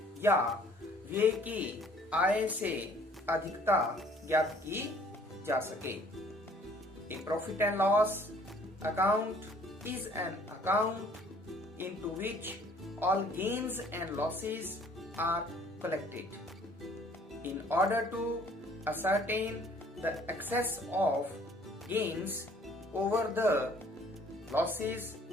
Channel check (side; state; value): both; normal; correlation 0.57